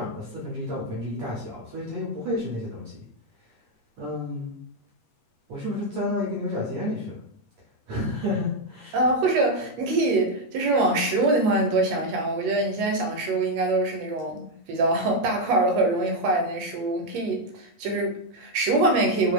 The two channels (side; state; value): left; late; 8.4 ms